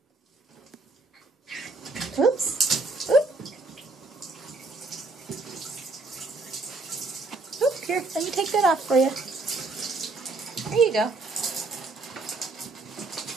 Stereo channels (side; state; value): left; quieter; 3.4 dB